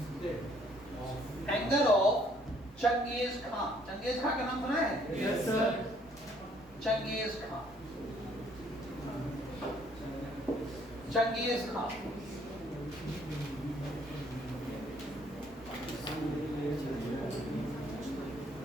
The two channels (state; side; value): normal; both; correlation 0.63